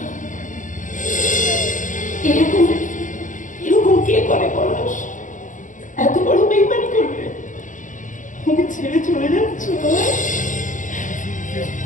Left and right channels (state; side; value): late; right; 0.37 ms